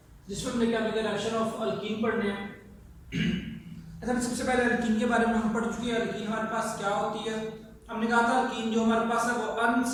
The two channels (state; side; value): identical; both; correlation 1.00